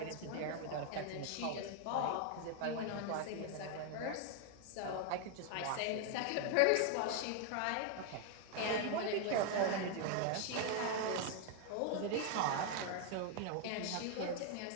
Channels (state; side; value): different; both; correlation 0.01